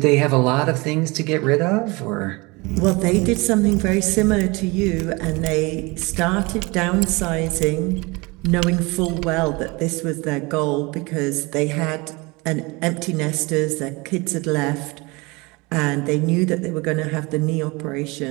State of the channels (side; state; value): left; quieter; 25.3 dB